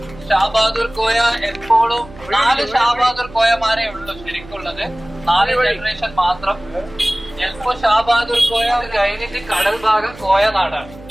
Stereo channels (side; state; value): right; noise; hum, 19 dB below the sound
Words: ഷാബഹാദൂർ കോയ എപ്പോഴും 4 ഷാബഹാദൂർ കോയമാരേ ഉള്ളൂ ശരിക്കുള്ളത്. 4 ജനറേഷൻ മാത്രം. ചിലപ്പോ ഷാബഹാദൂർ കോയ കഴിഞ്ഞിട്ട് കടൽ ഭാഗം കോയ നാടാണ്.